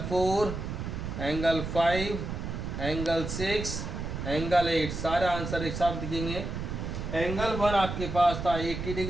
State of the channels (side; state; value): right; noise; rumble, 5 dB below the sound